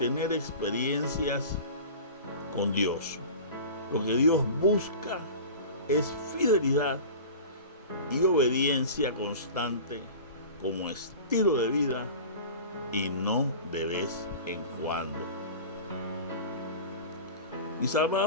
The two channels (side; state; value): both; inverted; correlation -0.36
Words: experiencias con Dios. Lo que Dios busca es fidelidad y obediencia constante como estilo de vida, y no de vez en cuando. Mis